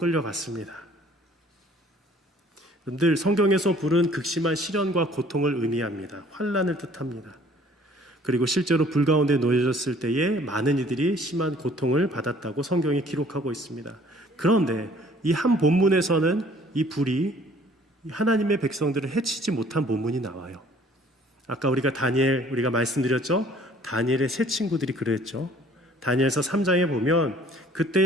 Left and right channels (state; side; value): normal; both; correlation 0.56